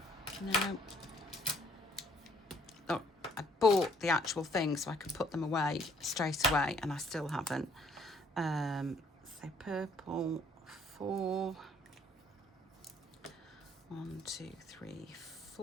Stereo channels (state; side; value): normal; both; correlation 0.62